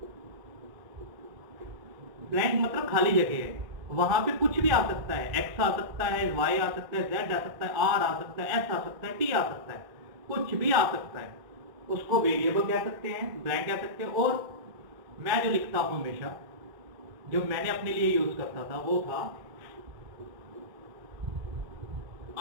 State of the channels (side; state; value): left; late; 2.5 ms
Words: ब्लैंक मतलब खाली जगह है, वहां पे कुछ भी आ सकता है। x आ सकता है, y आ सकता है, z आ सकता है, r आ सकता है, s आ सकता है, t आ सकता है, कुछ भी आ सकता है। उसको वेरिएबल कह सकते हैं, ब्लैंक कह सकते हैं। और मैं जो लिखता हूं हमेशा, जो मैंने अपने लिए यूज करता था वो था